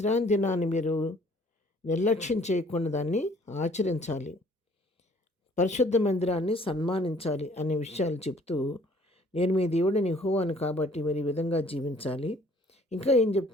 దినాన్ని మీరు నిర్లక్ష్యం చేయకుండా దాన్ని ఆచరించాలి, పరిశుద్ధ మందిరాన్ని సన్మానించాలి అనే విషయాలు చెప్తూ, నేను మీ దేవుడిని యెహోవాను కాబట్టి మీరు ఈ విధంగా జీవించాలి. ఇంకా ఏం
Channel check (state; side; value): normal; both; correlation 0.58